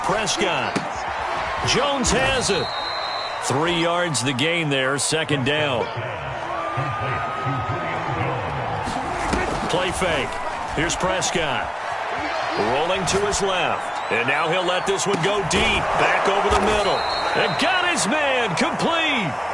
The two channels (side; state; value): both; identical; correlation 1.00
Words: Jones has it. 3 yards the gain there. Second down. Play fake. Here's Prescott. Rolling to his left. And now he'll let this one go deep. Back over the middle. And got his man. Complete.